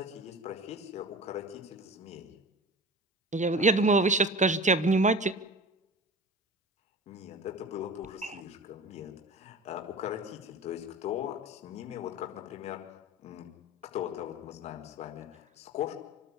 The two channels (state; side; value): normal; both; correlation 0.35